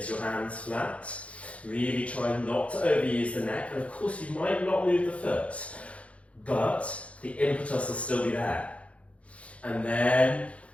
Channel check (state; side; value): late; right; 0.063 ms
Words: your hands flat. Really try not to overuse the neck, and of course you might not move the foot, but the impetus will still be there. And then